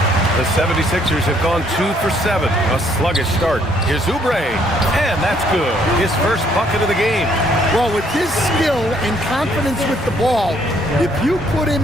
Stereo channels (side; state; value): both; normal; correlation 0.66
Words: The 76ers have gone 2 for 7. A sluggish start. Here's Oubre, and that's good. His first bucket of the game. Well, with his skill and confidence with the ball, if you put